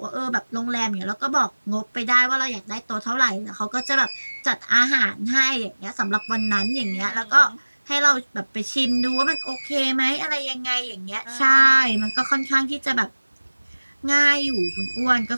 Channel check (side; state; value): both; inverted; correlation -1.00